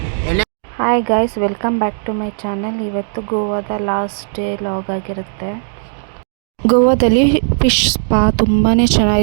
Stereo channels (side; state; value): left; silent; digital silence